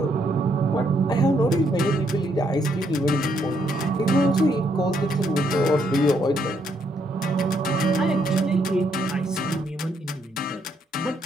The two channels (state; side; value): normal; both; correlation 0.73